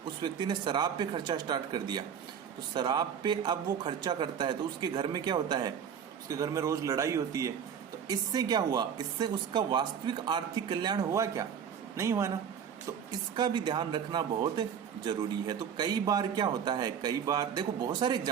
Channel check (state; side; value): quieter; left; 7.8 dB